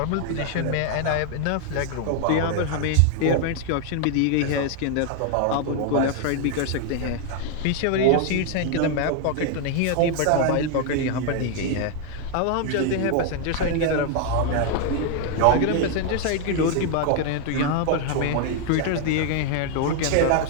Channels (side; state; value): both; different; correlation 0.00